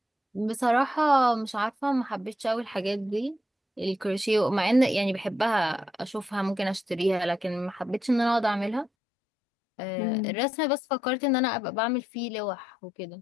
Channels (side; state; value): right; drops out; at 8.9 s